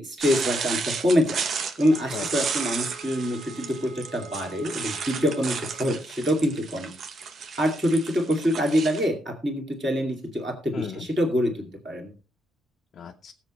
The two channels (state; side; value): normal; both; correlation 0.78